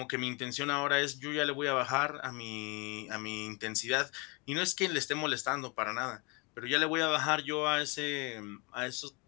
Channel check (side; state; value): right; quieter; 29.5 dB